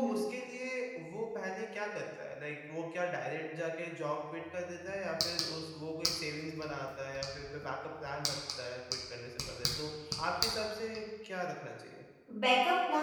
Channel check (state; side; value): identical; both; correlation 1.00